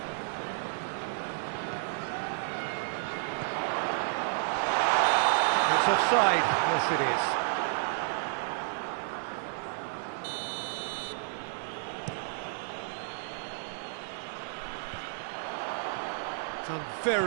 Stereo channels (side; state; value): left; silent; 56 dB below the other